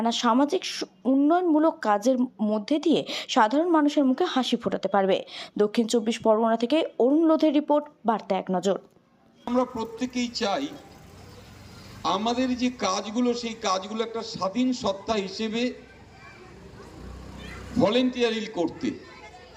সামাজিক উন্নয়নমূলক কাজের মধ্যে দিয়ে সাধারণ মানুষের মুখে হাসি ফোটাতে পারবে। দক্ষিণ 24 পরগনা থেকে অরুণ লোধের রিপোর্ট, বার্তা এক নজর। আমরা প্রত্যেকেই চাই আমাদের যে কাজগুলো, সেই কাজগুলো একটা স্বাধীন সত্তা হিসেবে ভলেন্টিয়ারি করতে।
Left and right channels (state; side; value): identical; both; correlation 1.00